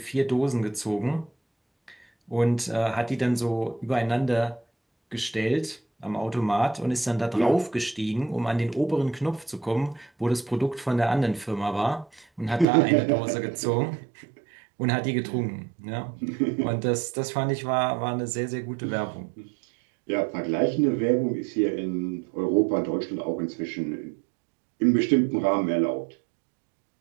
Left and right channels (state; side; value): drops out; left; at 12.7 s